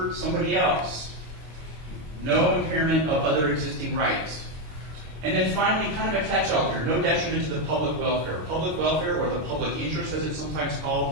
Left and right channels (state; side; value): late; left; 26 ms